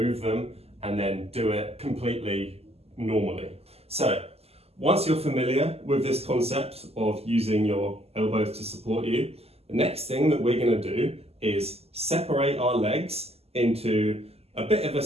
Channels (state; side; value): late; left; 0.29 ms